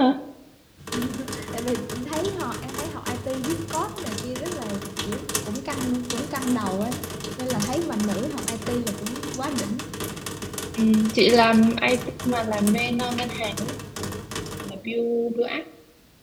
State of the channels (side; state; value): both; identical; correlation 1.00